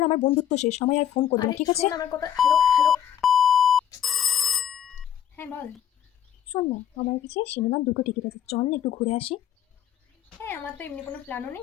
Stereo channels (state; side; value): quieter; right; 9.8 dB